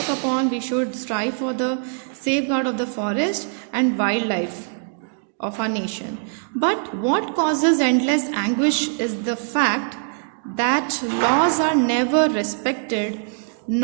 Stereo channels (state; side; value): silent; left; 64 dB below the other